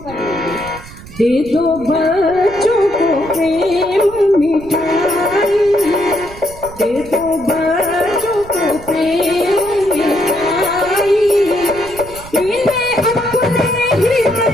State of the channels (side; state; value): right; noise; rumble, 17 dB below the sound